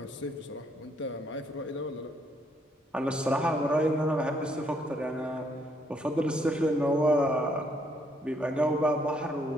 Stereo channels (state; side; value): normal; both; correlation 0.70